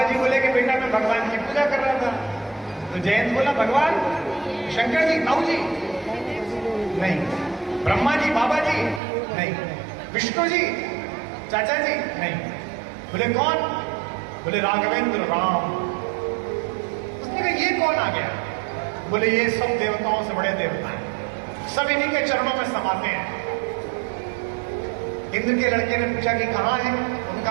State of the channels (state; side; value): drops out; left; at 9.0 s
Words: जी बोले कि बेटा मैं भगवान की पूजा कर रहा था। तो जयंत बोला भगवान? शंकर जी, ताऊ जी? नहीं। ब्रह्मा जी, बाबा जी? नहीं। विष्णु जी, चाचा जी? नहीं। बोले कौन? बोले राघवेंद्र, राम। उसने कहा ये कौन आ गया? बोले ये सब देवताओं से बड़े देवता हैं, सब इन्हीं के चरणों में समाते हैं। इंद्र के लड़के ने पूछा कि कहां है,